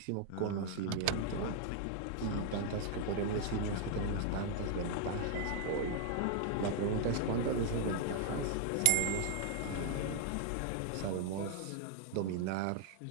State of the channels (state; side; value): different; both; correlation 0.00